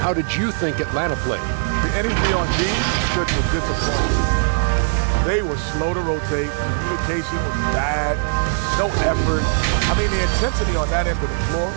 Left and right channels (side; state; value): left; silent; digital silence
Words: How did you think Atlanta played? The energy on D was disappointing. They were slow to rotate. Communication was bad. No effort. I mean, the intensity on that end of the floor,